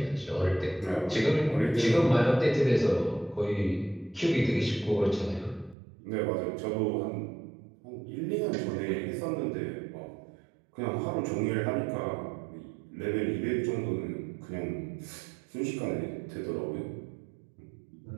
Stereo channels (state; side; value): drops out; left; at 5.8 s